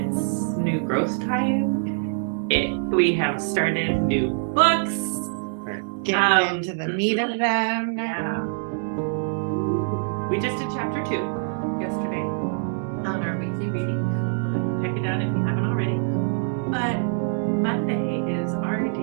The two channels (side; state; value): left; silent; 62 dB below the other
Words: new growth time. We have started new books. We're getting into the meat of them. Yeah. We just did chapter 2 yesterday on our weekly reading. Check it out if you haven't already. But Monday is our